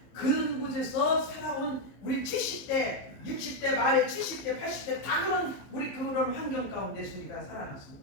그런 곳에서 살아온 우리 70대, 60대, 말에 70대, 80대 다 그런 환경 가운데서 우리가 살아났습니다.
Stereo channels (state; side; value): late; right; 15 ms